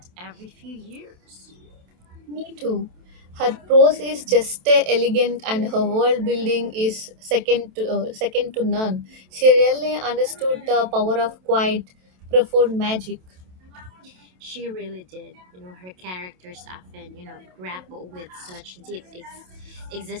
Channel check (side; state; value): left; late; 27 ms